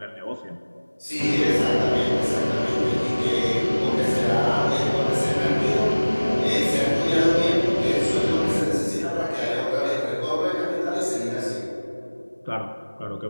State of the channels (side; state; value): both; inverted; correlation -1.00